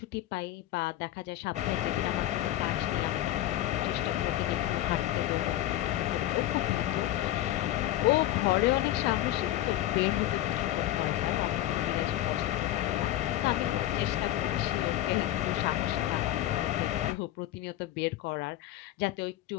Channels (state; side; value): quieter; right; 14.1 dB